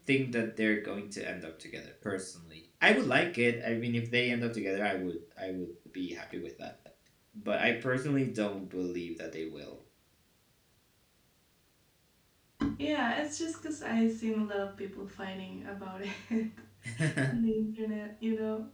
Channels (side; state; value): both; identical; correlation 1.00